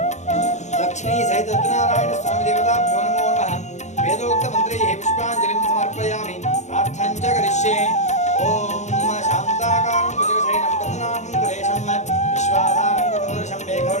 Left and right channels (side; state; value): right; late; 0.34 ms